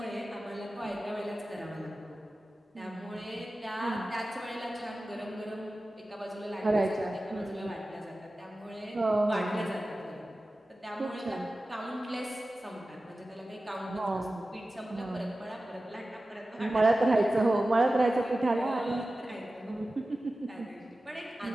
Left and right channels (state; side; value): normal; both; correlation 0.95